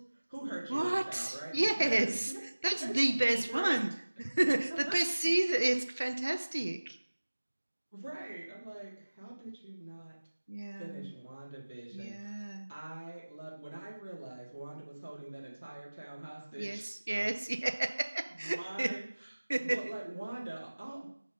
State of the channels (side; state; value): both; inverted; correlation -1.00